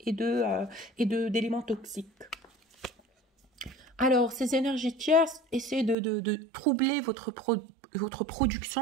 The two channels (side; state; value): left; drops out; at 6.0 s